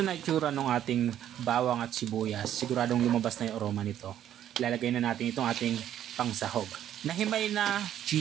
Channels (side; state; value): left; quieter; 10.9 dB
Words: na itsura ng ating bawang at sibuyas, siguradong lumabas na yung aroma nito. Ilalagay na natin itong ating pangsahog. Nahimay na